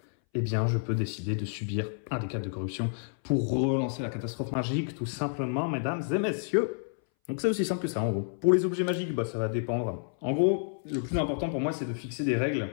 eh bien, je peux décider de subir un des 4 de corruption pour relancer la catastrophe magique, tout simplement, mesdames et messieurs. Donc c'est aussi simple que ça, en gros. Pour les objets magiques, bah, ça va dépendre. En gros, le plus important pour moi, c'est de fixer des règles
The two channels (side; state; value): right; silent; 58 dB below the other